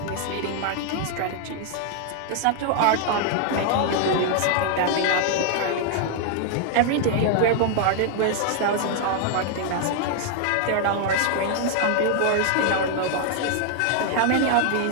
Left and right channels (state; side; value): different; both; correlation 0.00